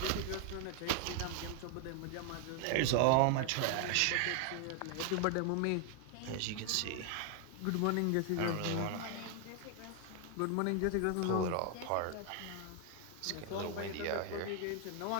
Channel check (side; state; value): both; different; correlation 0.00